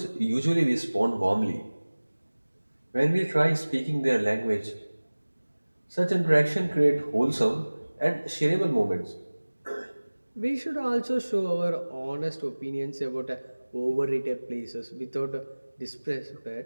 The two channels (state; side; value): inverted; both; correlation -1.00